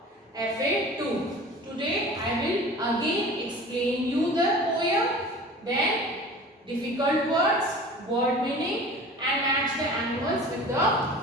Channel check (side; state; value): both; normal; correlation 0.40